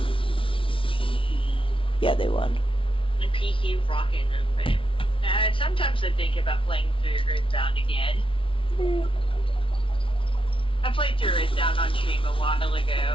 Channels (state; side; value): late; right; 0.25 ms